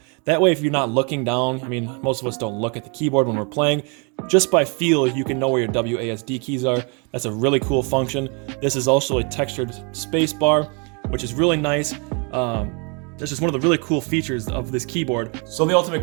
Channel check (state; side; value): quieter; left; 34.3 dB